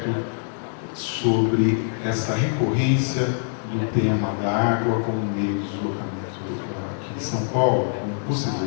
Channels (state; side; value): silent; right; digital silence